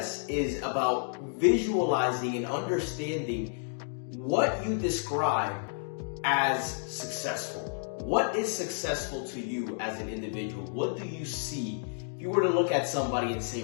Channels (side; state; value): right; silent; digital silence